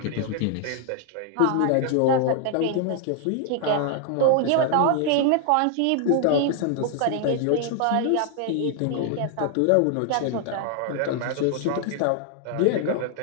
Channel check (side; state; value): both; different; correlation 0.00